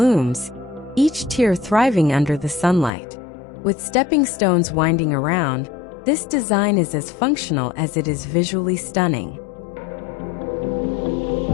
each tier thriving under the sunlight. With stepping stones winding around, this design is as functional as it is visually stunning.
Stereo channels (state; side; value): drops out; right; at 2.9 s